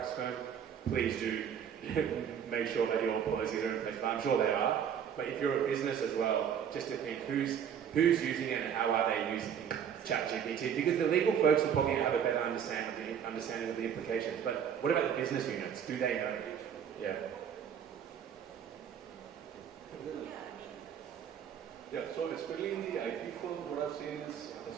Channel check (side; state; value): left; quieter; 8.3 dB